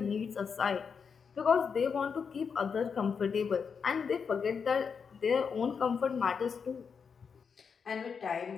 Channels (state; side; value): quieter; right; 6.1 dB